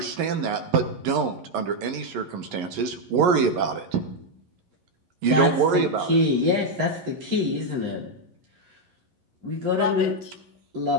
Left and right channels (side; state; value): left; late; 11 ms